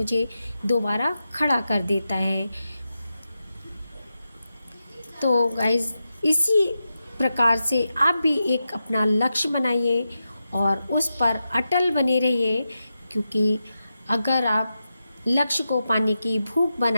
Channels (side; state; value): both; inverted; correlation -0.89